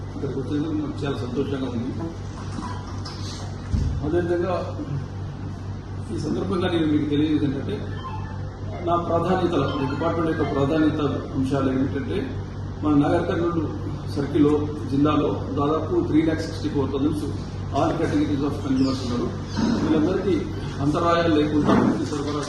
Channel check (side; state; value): both; identical; correlation 1.00